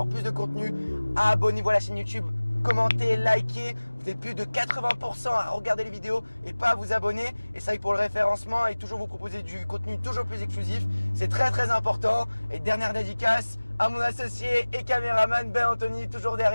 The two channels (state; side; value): inverted; both; correlation -1.00